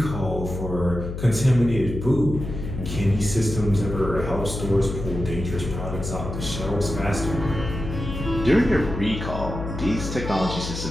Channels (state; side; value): noise; left; hum, 6 dB below the sound